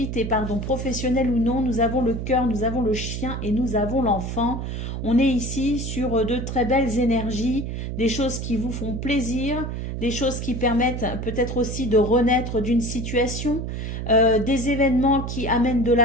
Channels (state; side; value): noise; right; hum, 5 dB below the sound